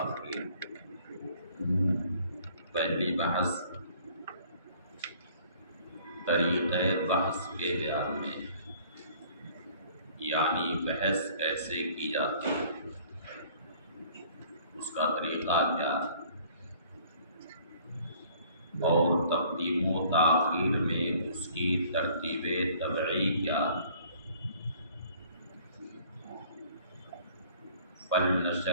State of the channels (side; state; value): both; inverted; correlation -0.55